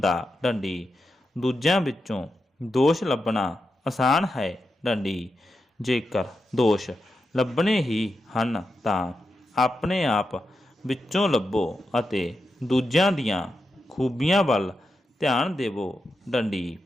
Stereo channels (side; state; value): both; normal; correlation 0.87